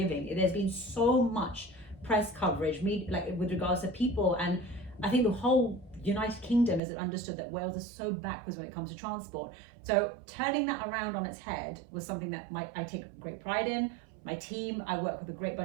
There's been so much press coverage, like with regards to people, and I think the whole United Kingdom has understood that Wales is so backwards when it comes to transport. So turning that around on its head was something that I take great pride in. My team, I work with a great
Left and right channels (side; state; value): left; drops out; at 6.8 s